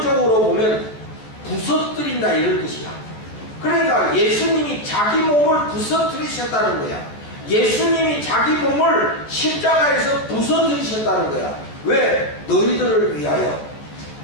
보면 부서뜨린다 이런 뜻이야. 그러니까 예수님이 자기 몸을 부서뜨리셨다는 거야. 예수님이 자기 몸을 십자가에서 부서뜨리셨다는 거야. 왜? 너희들을 위하여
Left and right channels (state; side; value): late; right; 14 ms